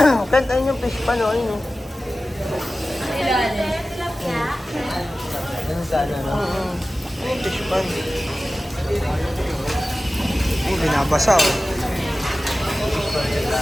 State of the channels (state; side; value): normal; both; correlation 0.96